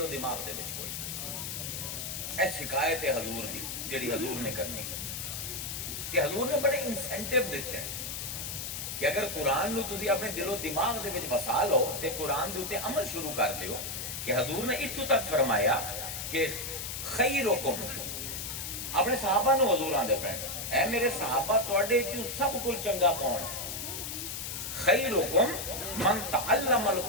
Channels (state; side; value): noise; left; hiss, 5 dB below the sound